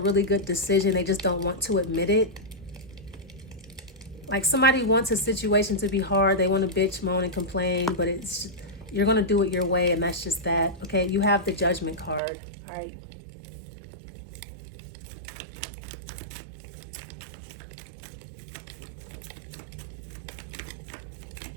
good decision. They just don't want to admit it. Like somebody wants a situation to be hard. They want to bitch, moan, and complain, but you're going to do it your way, and that's just that. Okay, you have the Judgment card. All right.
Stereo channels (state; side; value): drops out; left; at 12.2 s